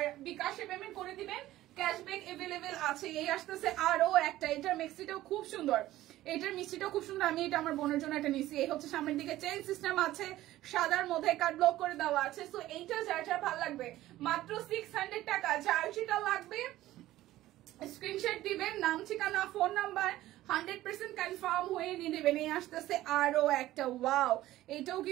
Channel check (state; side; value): quieter; left; 15.3 dB